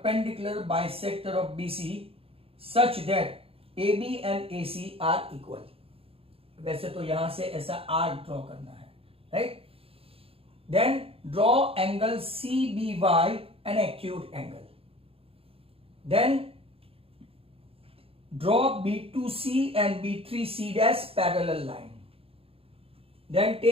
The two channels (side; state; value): left; late; 0.27 ms